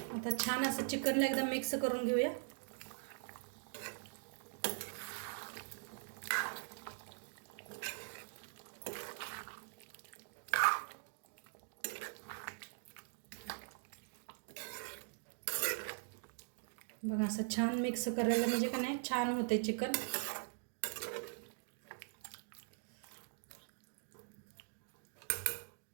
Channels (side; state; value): left; silent; digital silence